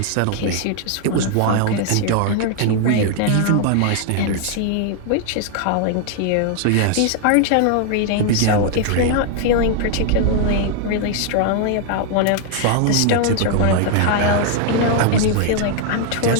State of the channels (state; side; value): different; both; correlation 0.00